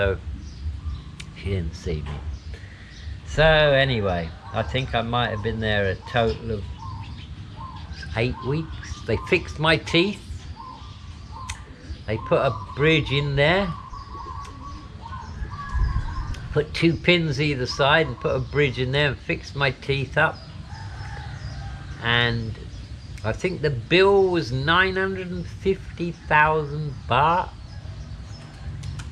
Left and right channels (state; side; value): identical; both; correlation 1.00